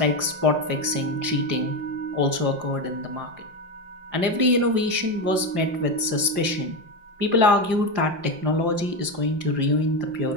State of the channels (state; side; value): late; left; 5.7 ms